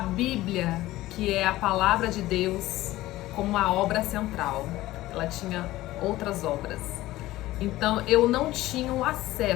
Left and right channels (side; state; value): right; quieter; 16.7 dB